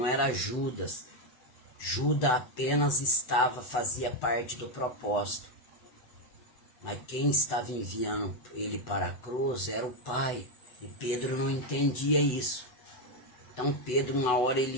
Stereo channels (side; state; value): right; late; 8.1 ms